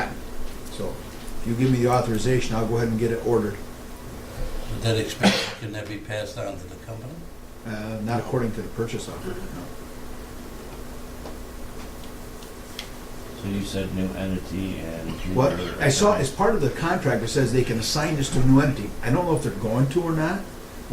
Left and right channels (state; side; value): identical; both; correlation 1.00